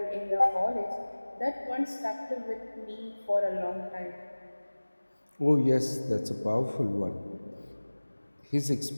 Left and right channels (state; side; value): inverted; both; correlation -1.00